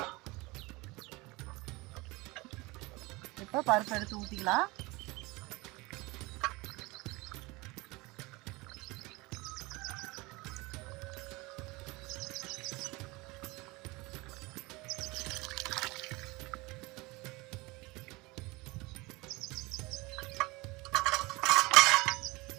இப்போ பருப்பு எடுத்து ஊற்றிக்கலாம்.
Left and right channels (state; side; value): quieter; left; 23.4 dB